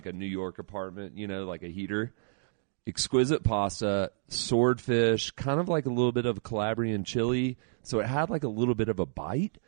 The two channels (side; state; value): left; silent; digital silence